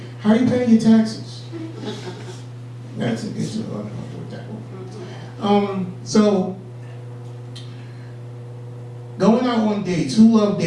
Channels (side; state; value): both; identical; correlation 1.00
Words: How are you paying your taxes? That's a good job. So, going out on dates. Who love